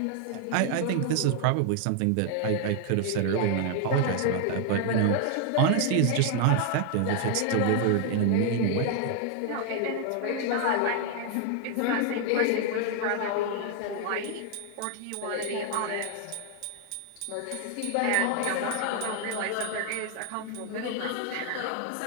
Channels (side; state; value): both; different; correlation 0.00